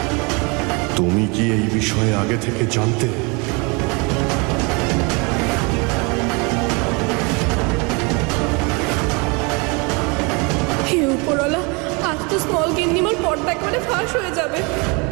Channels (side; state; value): left; quieter; 29.9 dB